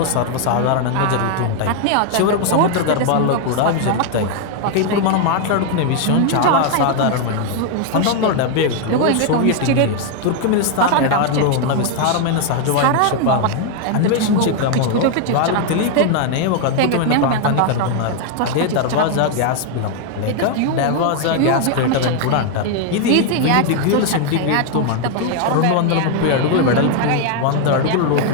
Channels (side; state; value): both; different; correlation 0.00